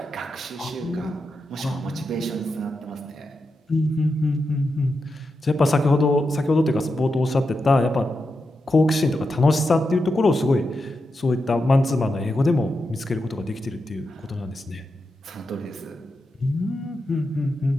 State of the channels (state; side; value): normal; both; correlation 0.88